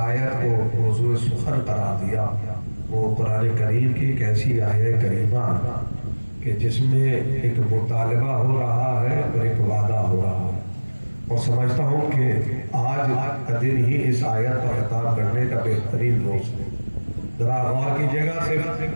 کو موضوع سخن قرار دیا وہ قرآن کریم کی ایک ایسی آیت کریمہ کہ جس میں ایک مطالبہ ہو رہا ہے اور ایک وعدہ ہو رہا ہے، اور سمجھتا ہوں کہ آج کا دن ہی اس آیت پر خطاب کرنے کا بہترین روز ہے۔ ذرا غور کیجیے گا، صرف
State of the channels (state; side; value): inverted; both; correlation -1.00